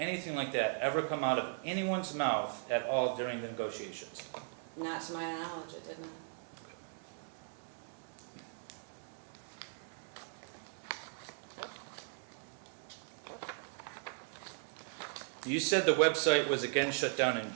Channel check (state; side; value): silent; left; digital silence